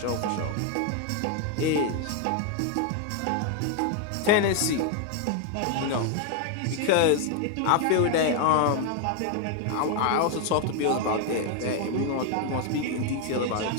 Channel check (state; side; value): different; both; correlation 0.01